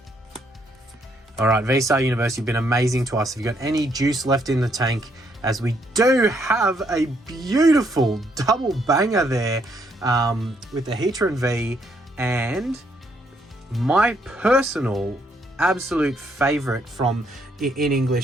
All right, VSTAR Universe, you've been amazing to us. Have you got any juice left in the tank? As we do have a beautiful double banger there with the Heatran V and my personal absolute favorite from, in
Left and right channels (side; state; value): both; normal; correlation 0.72